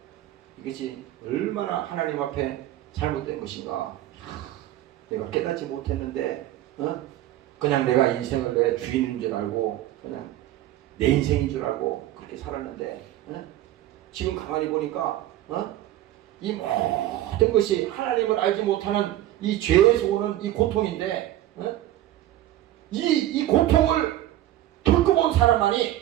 이것이 얼마나 하나님 앞에 잘못된 것인가. 내가 깨닫지 못했는데 그냥 내가 인생을 내 주인인 줄 알고 그냥 내 인생인 줄 알고 그렇게 살았는데 지금 가만히 보니까 이 모든 것이 하나님을 알지 못하는 이 죄에서 오는 이 고통인데 이 고통을 겪어본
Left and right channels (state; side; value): quieter; left; 13.9 dB